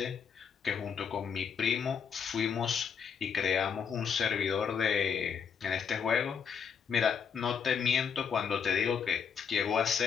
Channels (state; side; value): quieter; right; 6.9 dB